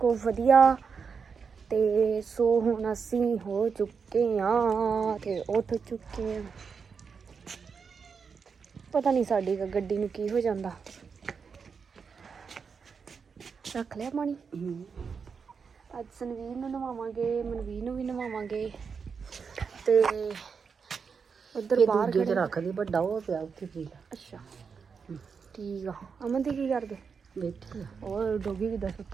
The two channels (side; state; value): left; quieter; 5.8 dB